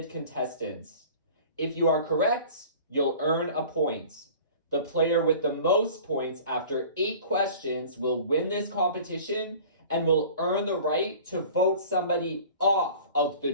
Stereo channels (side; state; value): both; inverted; correlation -0.44